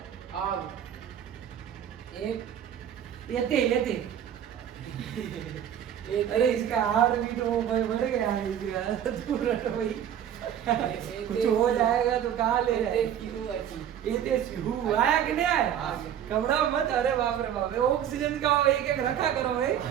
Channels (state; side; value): quieter; left; 9.7 dB